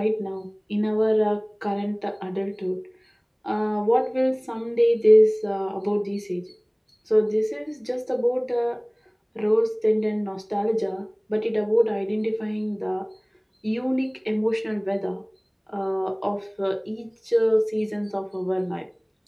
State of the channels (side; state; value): both; identical; correlation 1.00